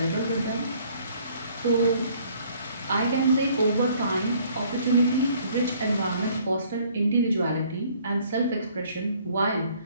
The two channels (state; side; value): inverted; both; correlation -0.60